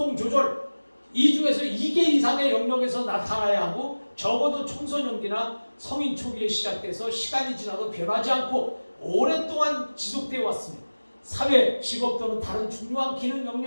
조절 이 중에서 2개 이상의 영역에서 나타나야 하고 적어도 청소년기나 성인 초기에 시작돼서 시간이 지나도 변하지 않고 오랫동안 지속되어 왔습니다. 사회, 직업 또는 다른 중요한 기능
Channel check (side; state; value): both; inverted; correlation -1.00